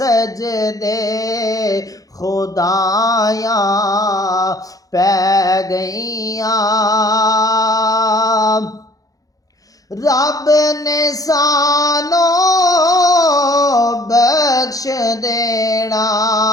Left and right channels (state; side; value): late; right; 0.17 ms